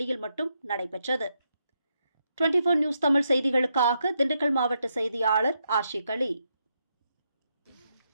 மட்டும் நடைபெற்றது. 24 நியூஸ் தமிழ் செய்திகளுக்காக திண்டுக்கல் மாவட்ட செய்தியாளர் ஆஷிக் அலி.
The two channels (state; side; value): inverted; both; correlation -0.80